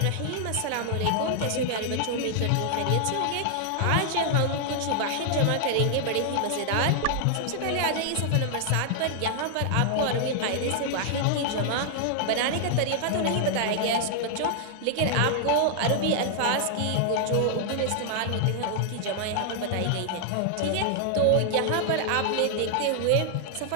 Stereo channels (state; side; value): different; both; correlation -0.01